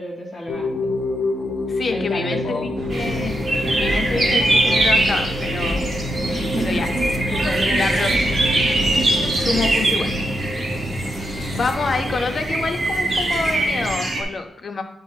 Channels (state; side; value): normal; both; correlation 0.83